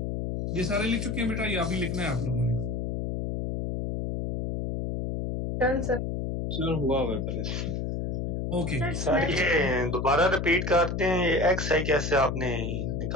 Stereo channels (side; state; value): left; noise; hum, 2 dB below the sound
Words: ये सारे लिख चुके हैं बेटा, ये अभी लिखना है आप लोगों ने। Done sir. सर हुआ हुआ पहले। ओके सर ये दोबारा रिपीट करते हैं, ये XI कैसे आपने